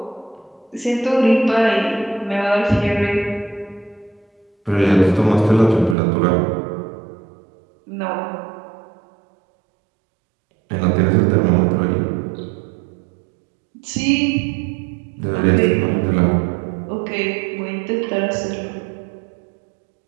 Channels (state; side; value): drops out; left; at 6.0 s